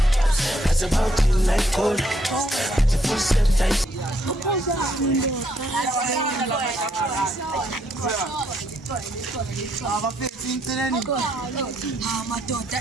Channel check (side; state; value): both; normal; correlation 0.72